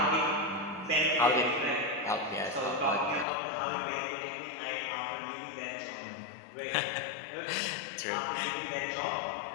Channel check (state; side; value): drops out; right; at 3.2 s